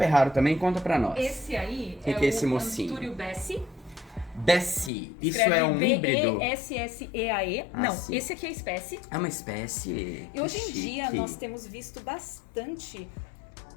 raro também, conta pra nós. Esse aí Que é que é esse o mocinho? Antúrio Bessie. Bessie. Isso Escreve é um híbrido? B-E-S-S-E-A-E. Ah, Não, sim. esse aqui é a espécie. É uma espécie. E hoje em Que dia chique. nós temos visto bastante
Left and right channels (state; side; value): drops out; right; at 4.9 s